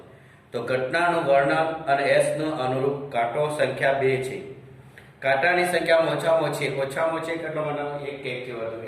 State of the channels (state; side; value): identical; both; correlation 1.00